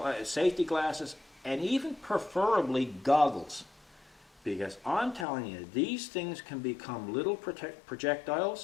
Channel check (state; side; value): drops out; right; at 5.2 s